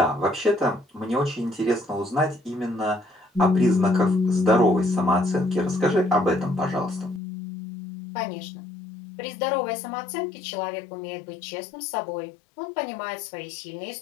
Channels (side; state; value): right; drops out; at 7.2 s